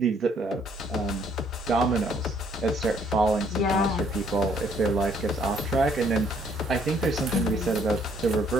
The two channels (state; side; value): normal; both; correlation 0.65